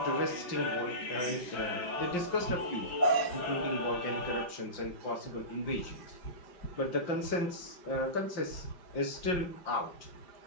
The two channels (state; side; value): late; right; 5.7 ms